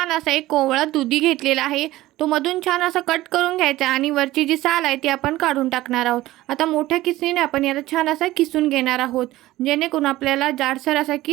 असा एक कोवळा दुधी घेतलेला आहे. तो मधून छान असा कट करून घ्यायचा आणि वरची जी साल आहे ती आपण काढून टाकणार आहोत. आता मोठ्या किसणीने आपण याला छान असा किसून घेणार आहोत, जेणेकरून आपल्याला जाडसर असा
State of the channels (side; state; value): left; quieter; 16.8 dB